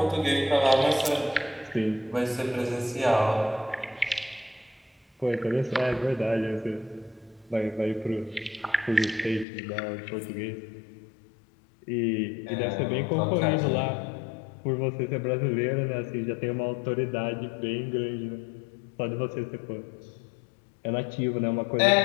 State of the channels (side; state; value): right; drops out; at 9.5 s